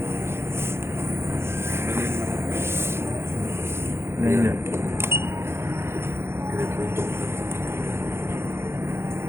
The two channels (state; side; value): late; left; 0.12 ms